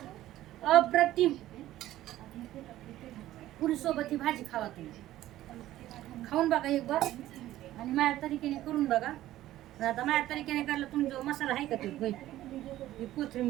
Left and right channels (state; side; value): quieter; left; 14.4 dB